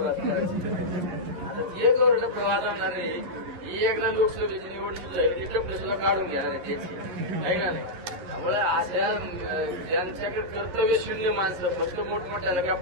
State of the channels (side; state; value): left; late; 11 ms